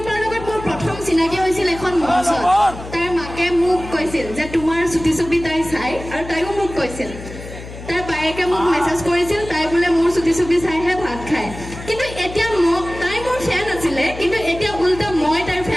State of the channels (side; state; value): left; noise; hum, 13 dB below the sound